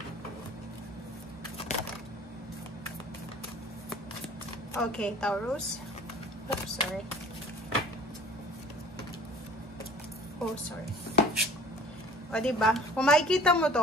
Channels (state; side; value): normal; both; correlation 0.48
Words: Okay, Taurus. Oops, sorry. Oh, sorry. O, diba? Kung makikita mo